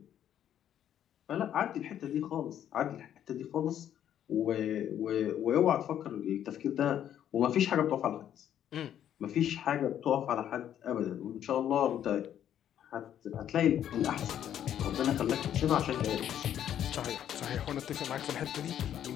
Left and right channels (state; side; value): quieter; right; 10.4 dB